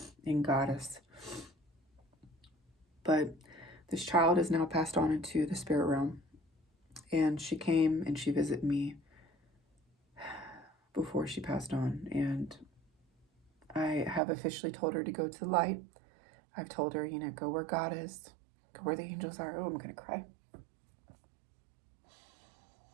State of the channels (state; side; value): drops out; left; at 14.2 s